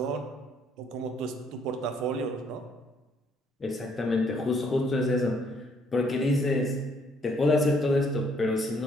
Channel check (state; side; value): normal; both; correlation 0.67